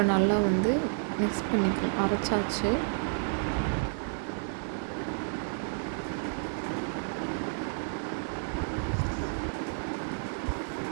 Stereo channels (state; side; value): silent; left; digital silence